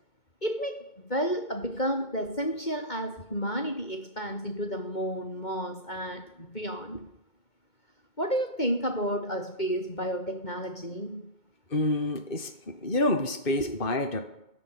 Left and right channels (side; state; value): right; late; 2.2 ms